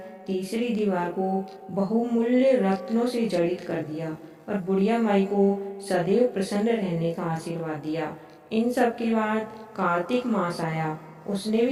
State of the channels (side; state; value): both; identical; correlation 1.00